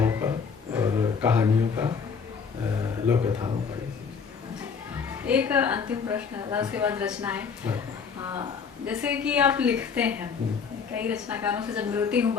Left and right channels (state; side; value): quieter; right; 6.0 dB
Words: का और कहानियों का, लोक कथाओं का। एक अंतिम प्रश्न है, उसके बाद रचनाएं। जैसे कि आप लिखते हैं, कई रचनाकारों से जब मिलती हूँ,